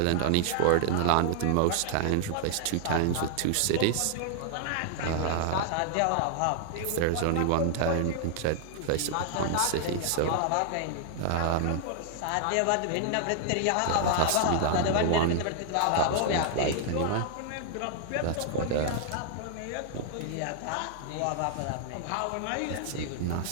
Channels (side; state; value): both; different; correlation 0.00